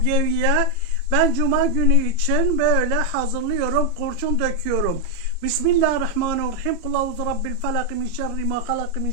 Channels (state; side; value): late; left; 33 ms